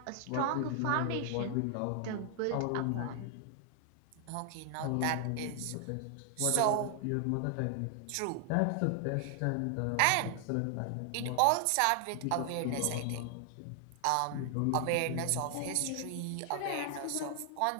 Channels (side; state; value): both; different; correlation 0.00